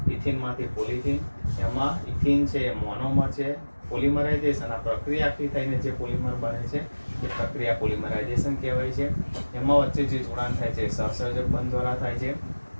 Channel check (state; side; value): inverted; both; correlation -1.00